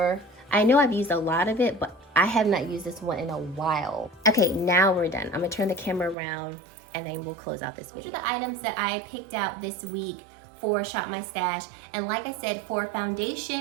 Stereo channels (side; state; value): left; drops out; at 6.2 s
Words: I know I've used a lot of it, but I have not used this one in a while. Okay, now we're done. I'm gonna turn the camera around and then we'll close out this video. These are the items that I picked out this week for Shop My Stash. And like I said, for